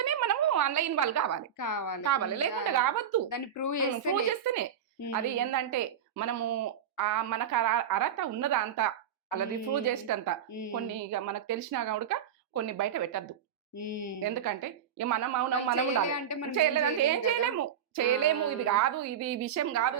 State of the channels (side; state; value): left; quieter; 8.7 dB